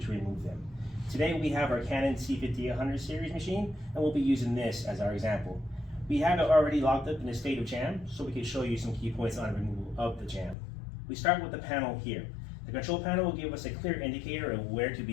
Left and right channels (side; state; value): right; drops out; at 10.6 s